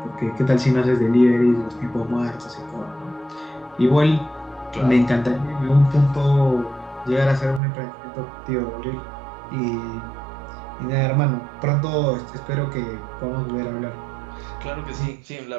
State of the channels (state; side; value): drops out; left; at 7.6 s